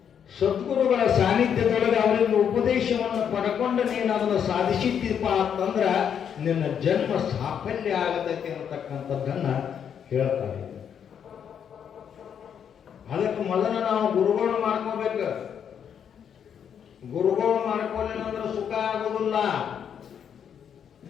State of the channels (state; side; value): quieter; right; 8.2 dB